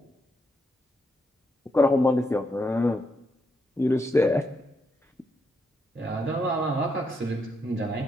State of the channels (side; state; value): both; normal; correlation 0.80